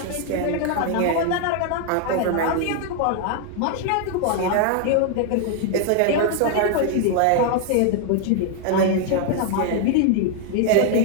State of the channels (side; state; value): both; different; correlation 0.00